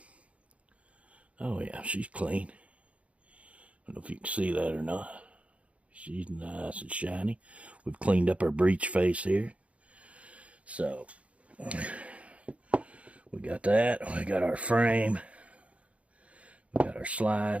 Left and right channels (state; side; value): late; left; 0.064 ms